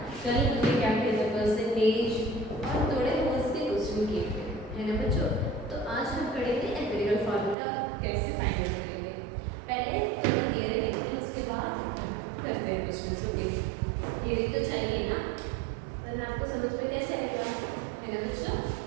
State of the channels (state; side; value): drops out; left; at 7.6 s